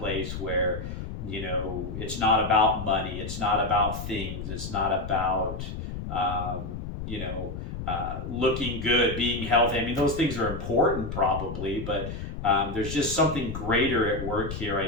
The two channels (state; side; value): noise; left; rumble, 7 dB below the sound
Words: where it's not about money, it's not about things, it's not about looking good, being healthy. I mean, those things are important probably, but there's just something greater at work here.